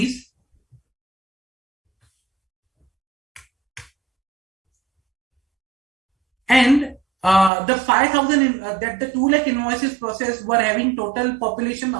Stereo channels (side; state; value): left; drops out; at 7.5 s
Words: And the 5,000 that the 2 lakh invoices processed were having total population